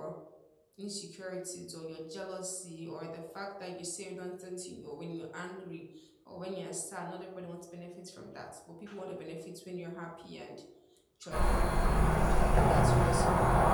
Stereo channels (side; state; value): both; identical; correlation 1.00